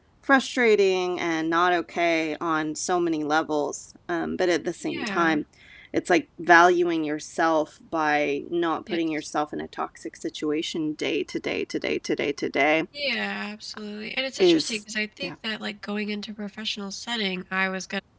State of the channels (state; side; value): identical; both; correlation 1.00